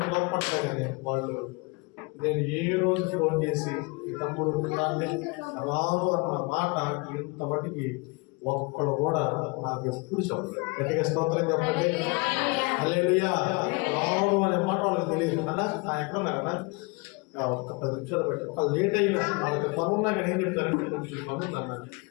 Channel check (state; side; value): quieter; right; 28.1 dB